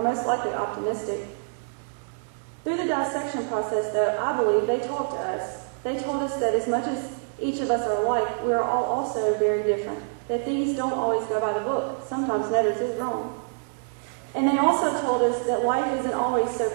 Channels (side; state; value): left; silent; 61 dB below the other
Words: most likely optimistic? Through the dissection process, though, I believe they talked to us. They told us that as much as each of us are alike, we are all also very different, that things don't always go by the book. Sometimes Netters is wrong. And they also told us that life isn't always so